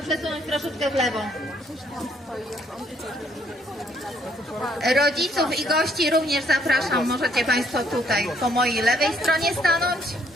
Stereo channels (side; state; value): both; normal; correlation 0.68